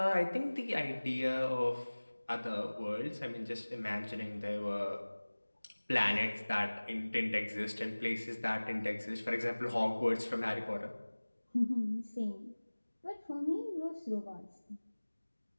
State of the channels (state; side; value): inverted; both; correlation -1.00